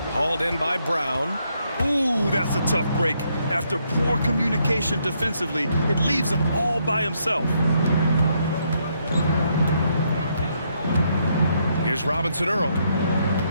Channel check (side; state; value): both; inverted; correlation -0.75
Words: Hauled in by Brown. Ooh, that's a tough break. After poor communication defensively, it leaves him all by himself. Here's Robinson Earl.